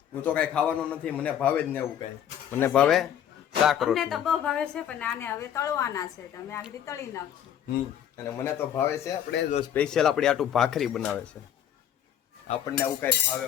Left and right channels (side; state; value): right; quieter; 9.9 dB